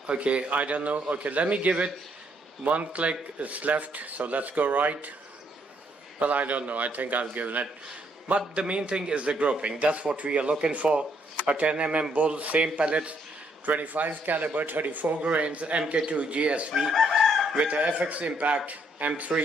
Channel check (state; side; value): normal; both; correlation 0.71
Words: Okay, I don't know. Okay, let me give it one click. It's left, so let's go right. Well, I don't know. I think I've given it. But the main thing is the grouping. That's what we are looking for. A 10 bull, same pellets, 25 caliber, 34 grains, MK2 GSV with a FX Impact